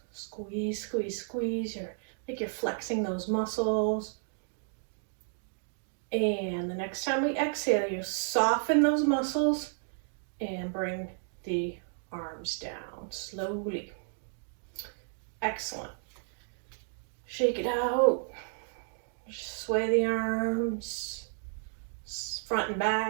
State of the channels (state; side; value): silent; left; digital silence